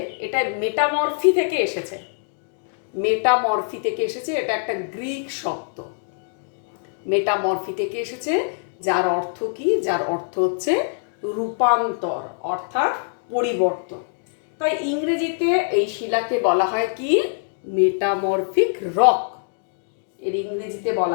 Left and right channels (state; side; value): silent; right; digital silence